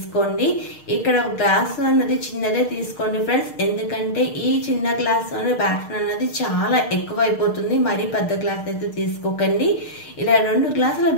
ఇక్కడ గ్లాస్ అన్నది చిన్నదే తీసుకోండి ఫ్రెండ్స్, ఎందుకంటే ఈ చిన్న గ్లాస్ బ్యాటర్ అన్నది చాలా ఎక్కువ అయిపోతుంది. మరీ పెద్ద గ్లాస్ అయితే తీసుకోకండి. ఇలా 2 గ్లాసుల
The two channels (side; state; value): right; late; 6.5 ms